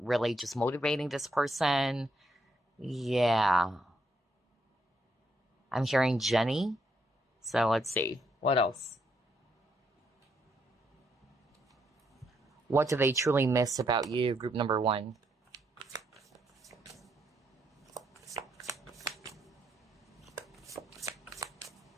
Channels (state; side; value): normal; both; correlation 0.76